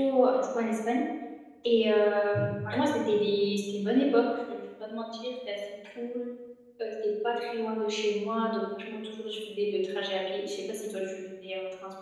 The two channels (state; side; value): identical; both; correlation 1.00